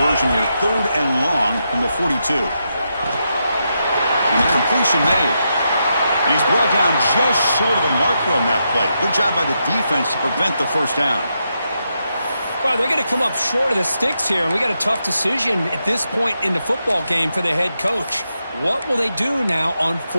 here. 3rd and long from the 42. And the completion made. And he's brought down just short of the marker on that play. Good job by the defense to prevent the first down. Well, they're going to come up short of the sticks here, and we got a tough decision at this point in the football game for the head coach. What will they do now on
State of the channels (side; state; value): both; inverted; correlation -0.84